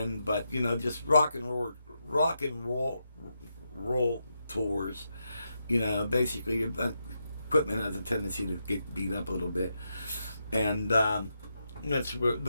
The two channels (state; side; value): inverted; both; correlation -0.84